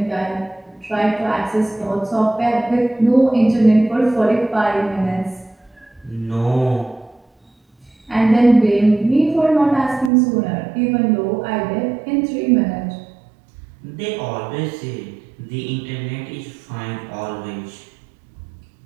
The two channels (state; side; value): drops out; left; at 10.1 s